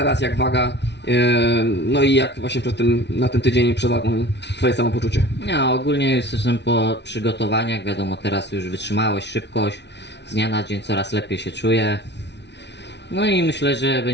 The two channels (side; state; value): right; late; 0.50 ms